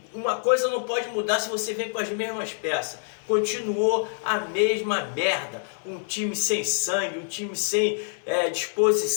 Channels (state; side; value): silent; right; digital silence